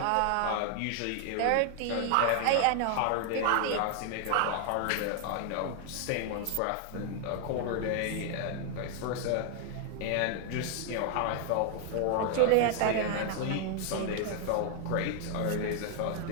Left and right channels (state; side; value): different; both; correlation 0.00